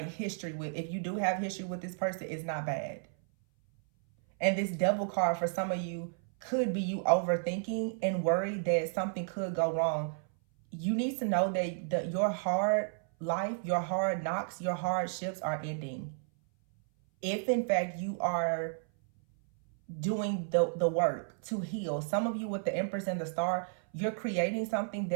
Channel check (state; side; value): silent; left; 56 dB below the other